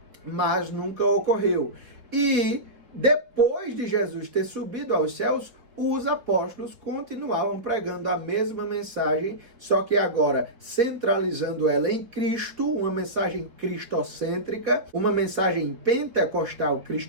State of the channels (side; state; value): left; late; 4.3 ms